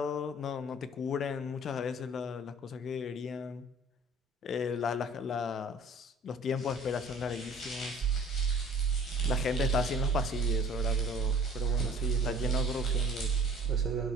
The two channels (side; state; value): both; normal; correlation 0.50